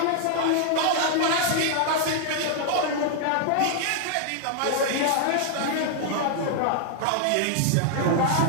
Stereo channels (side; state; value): both; different; correlation 0.00